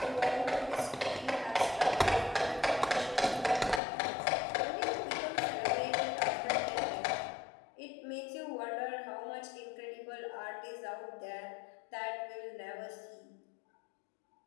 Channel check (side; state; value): right; drops out; at 3.8 s